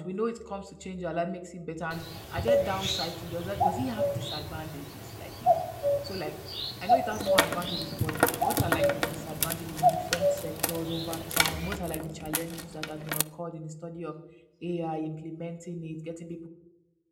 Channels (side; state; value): both; identical; correlation 1.00